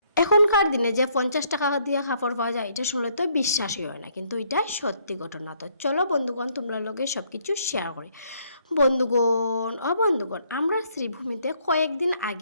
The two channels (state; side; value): inverted; both; correlation -0.68